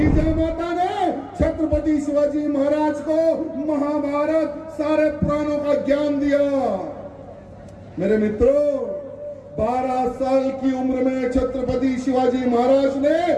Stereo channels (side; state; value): both; identical; correlation 1.00